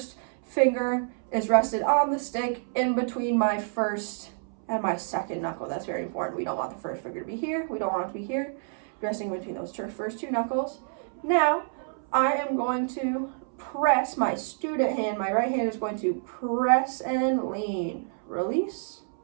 finger is rested on the stick in between my first and my second knuckle. That's very important. We don't want the first finger to be here. We don't want it to be here. Resting between those first two knuckles. Now, I am going to press my student hand. My right hand is going to press and lean. Release.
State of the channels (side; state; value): left; silent; 58 dB below the other